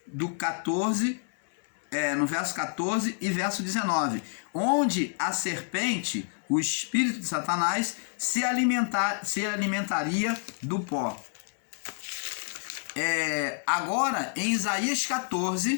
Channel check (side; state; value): right; silent; 59 dB below the other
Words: do 14, no verso 14 e verso 19, onde a serpente, o espírito de Satanás, se alimentaria do pó. Agora, em Isaías